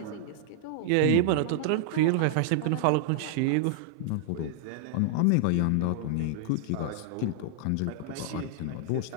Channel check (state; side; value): different; both; correlation -0.01